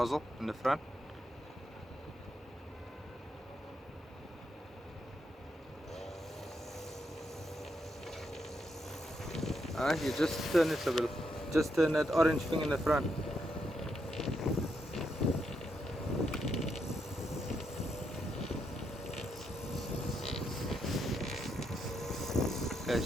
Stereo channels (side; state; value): both; normal; correlation 0.80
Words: in the front. You just turn it a bit. Just turn that orange thing in the front. Okay,